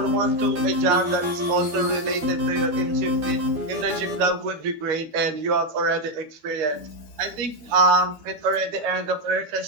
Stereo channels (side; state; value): left; late; 12 ms